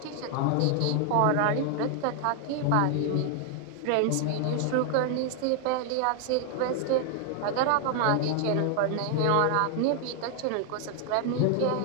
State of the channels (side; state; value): both; different; correlation 0.00